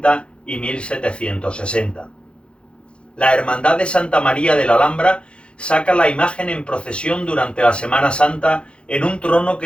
y 1760. La Hermandad de Santa María de la Alhambra saca la imagen en procesión durante la Semana Santa en un trono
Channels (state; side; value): late; right; 0.057 ms